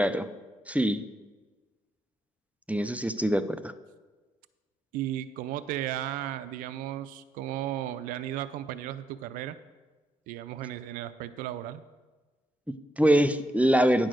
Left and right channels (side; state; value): both; normal; correlation 0.79